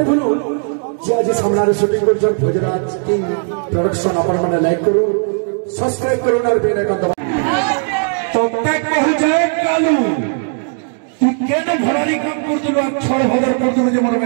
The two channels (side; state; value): left; silent; 56 dB below the other